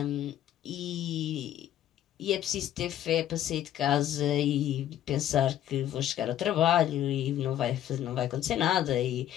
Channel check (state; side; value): quieter; right; 11.7 dB